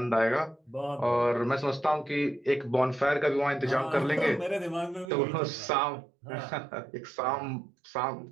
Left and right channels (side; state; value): left; drops out; at 5.1 s